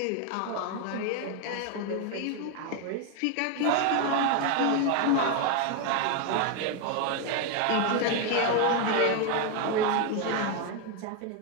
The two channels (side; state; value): both; different; correlation 0.01